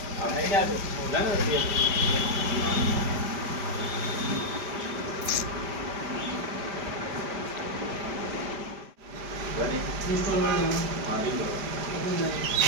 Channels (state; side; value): late; left; 5.0 ms